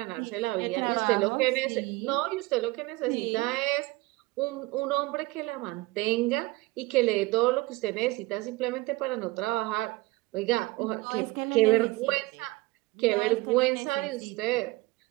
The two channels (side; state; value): left; quieter; 21.0 dB